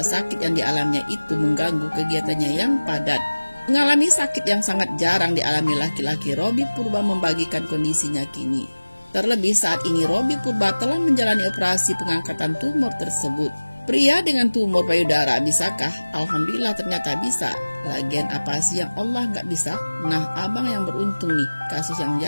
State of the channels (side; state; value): both; inverted; correlation -1.00